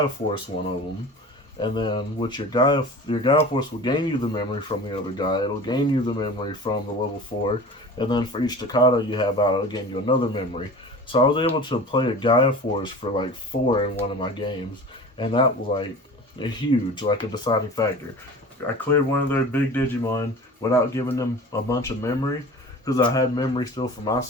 Force one of them, and then with your Gaia Force will gain you the memory from the other guy, it'll gain you the memory from the level 4, and then for each Chikado you have out, it'll gain you another memory. So I was able to play a Gaia Force for like 4 in one of my games, and that was like a huge, like a deciding factor. I cleared one of their big Digimon without giving them a bunch of memory, because I had memory still from my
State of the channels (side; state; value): both; normal; correlation 0.38